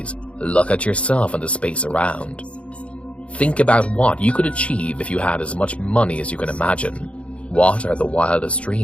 look at yourself and the space around. Think about what you could achieve if you had as much money as you can imagine. What are the wildest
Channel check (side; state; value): right; late; 0.061 ms